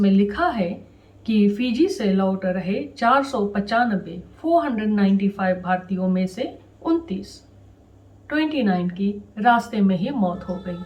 लिखा है कि फिजी से लौट रहे 495 भारतीयों में से 29 की रास्ते में ही मौत हो गई।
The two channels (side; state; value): both; identical; correlation 1.00